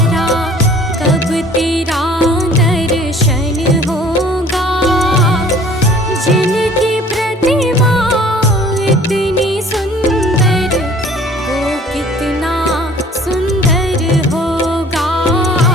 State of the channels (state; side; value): normal; both; correlation 0.52